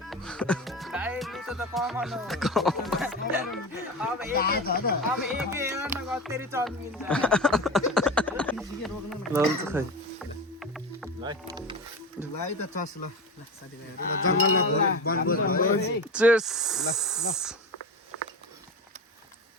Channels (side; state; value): both; normal; correlation 0.25